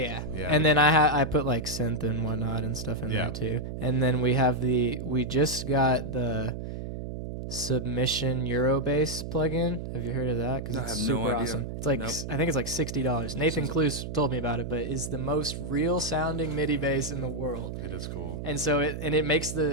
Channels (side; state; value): right; noise; hum, 7 dB below the sound